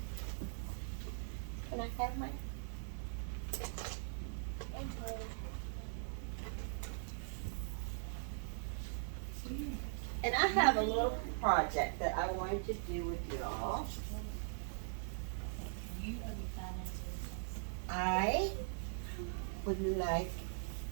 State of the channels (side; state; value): left; silent; digital silence